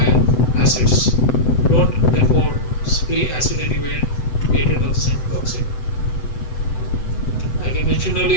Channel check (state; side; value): late; right; 7.9 ms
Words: acids. Don't therefore spray acid anywhere to get rid of the endotoxin. Like I mentioned